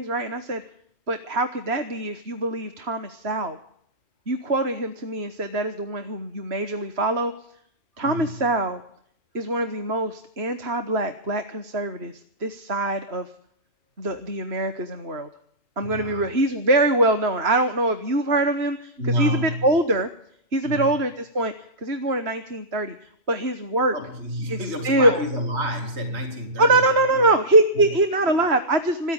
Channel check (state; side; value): late; left; 3.0 ms